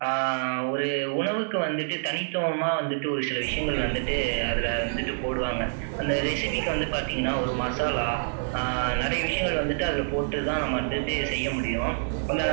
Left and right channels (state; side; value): silent; left; digital silence